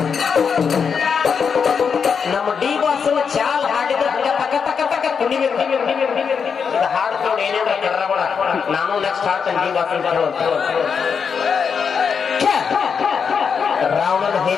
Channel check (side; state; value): right; quieter; 6.3 dB